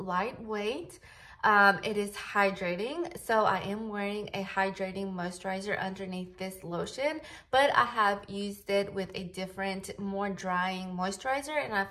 It is hydrating, so I am wearing a hydrating moisturizer underneath this lotion, but I have used it with a different, more drying moisturizer, and I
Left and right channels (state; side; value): identical; both; correlation 1.00